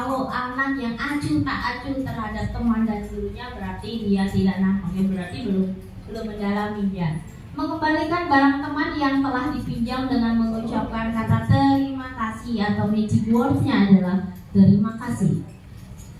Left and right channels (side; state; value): both; identical; correlation 1.00